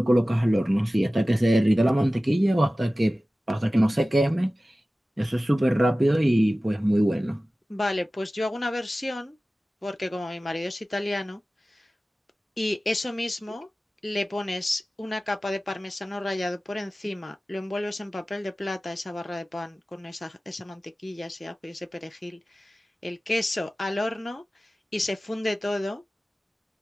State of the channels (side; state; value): both; normal; correlation 0.97